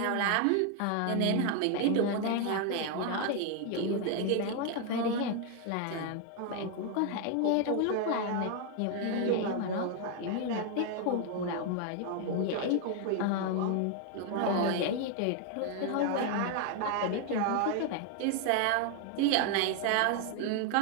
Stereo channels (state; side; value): different; both; correlation 0.00